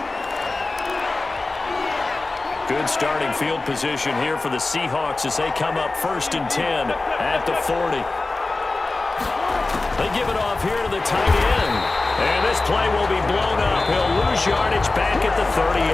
Good starting field position here for the Seahawks as they come up 1st and 10 at the 40. They give it off here to the tight end. And this play will be blown up. He'll lose yardage back at the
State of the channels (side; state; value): right; quieter; 3.3 dB